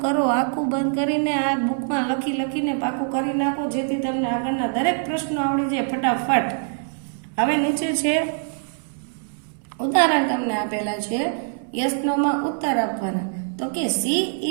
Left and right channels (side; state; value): left; silent; 63 dB below the other